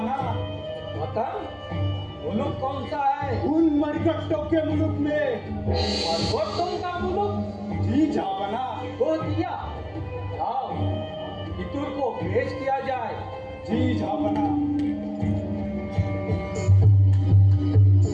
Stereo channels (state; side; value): identical; both; correlation 1.00